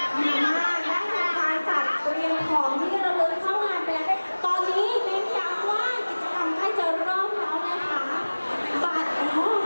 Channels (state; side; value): inverted; both; correlation -1.00